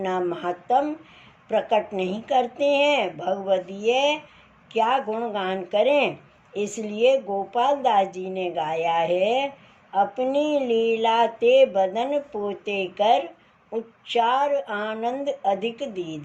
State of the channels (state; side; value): identical; both; correlation 1.00